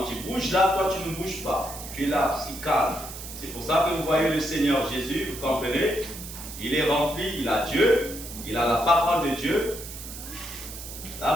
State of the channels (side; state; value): right; noise; hiss, 11 dB below the sound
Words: tu bouges là, toi, tu ne bouges pas. Tu es là, si calme. C'est pour ça que vous voyez le Seigneur Jésus, vous comprenez? Il est rempli, il a Dieu, il a la parole de Dieu. La